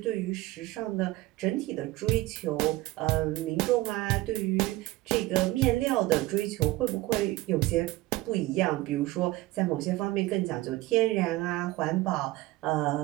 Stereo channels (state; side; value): quieter; left; 18.5 dB